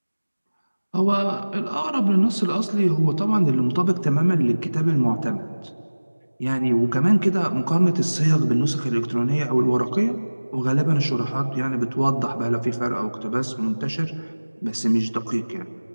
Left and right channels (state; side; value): inverted; both; correlation -1.00